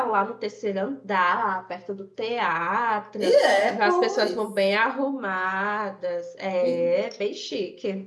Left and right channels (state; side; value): identical; both; correlation 1.00